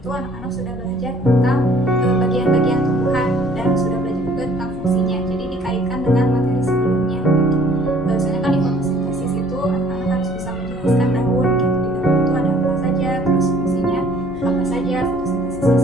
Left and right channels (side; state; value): both; normal; correlation 0.57